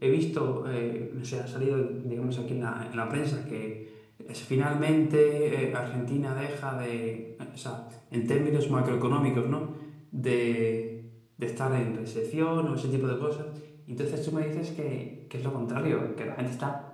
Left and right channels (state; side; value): identical; both; correlation 1.00